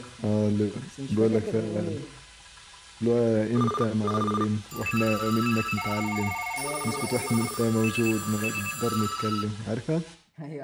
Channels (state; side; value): identical; both; correlation 1.00